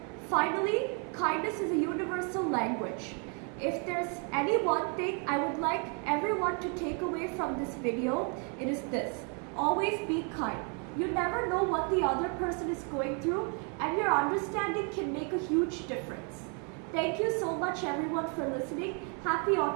Finally, kindness is a universal language. If there's any one thing I would like everyone to take away from this video, it is this: always be kind. You never know what the other person is going through, and your understanding can make a huge difference. Thank you so much everyone for listening. Happy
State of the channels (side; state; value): left; quieter; 38.1 dB